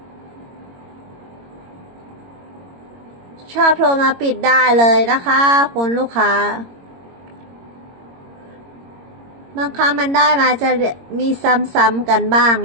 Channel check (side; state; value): left; late; 22 ms